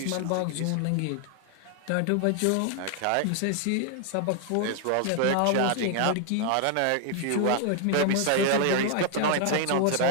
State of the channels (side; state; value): both; different; correlation 0.00